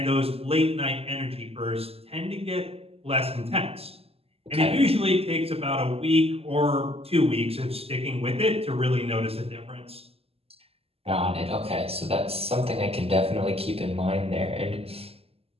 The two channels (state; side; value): late; left; 0.29 ms